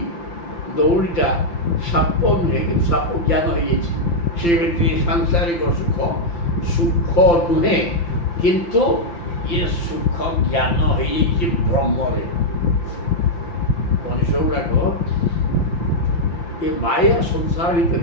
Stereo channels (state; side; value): late; right; 5.8 ms